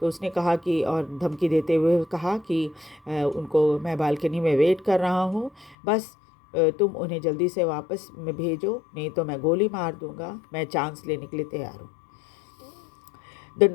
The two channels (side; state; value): right; drops out; at 5.8 s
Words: तो उसने कहा कि, और धमकी देते हुए कहा कि उनको मैं बालकनी में वेट कर रहा हूँ, बस तुम उन्हें जल्दी से वापस में भेजो, नहीं तो मैं गोली मार दूंगा, मैं चांस लेने के लिए तैयार हूँ। The